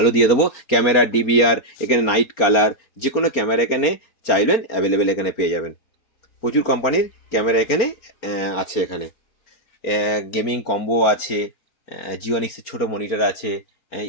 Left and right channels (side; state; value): right; late; 4.3 ms